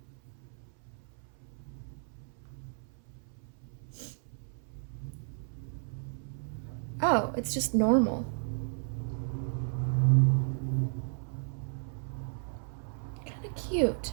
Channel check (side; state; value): left; silent; 55 dB below the other